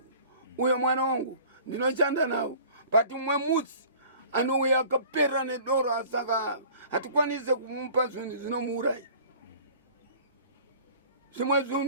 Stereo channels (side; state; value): both; inverted; correlation -0.47